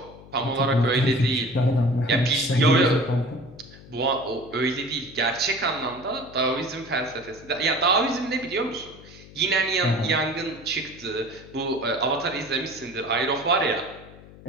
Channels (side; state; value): left; noise; hum, 20 dB below the sound